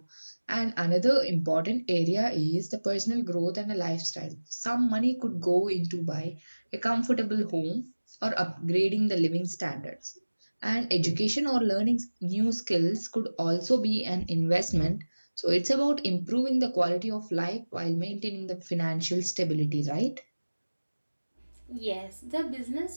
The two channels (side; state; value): both; inverted; correlation -1.00